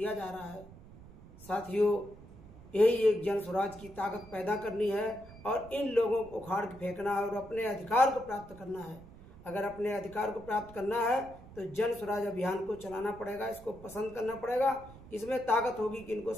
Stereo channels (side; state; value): right; noise; rumble, 19 dB below the sound